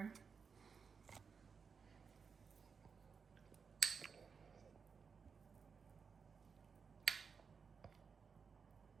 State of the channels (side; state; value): left; quieter; 5.7 dB